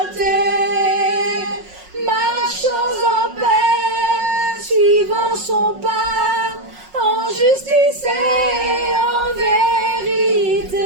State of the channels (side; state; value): left; late; 5.5 ms